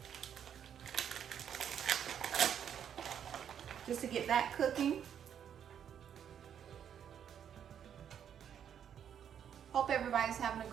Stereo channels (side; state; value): left; quieter; 8.8 dB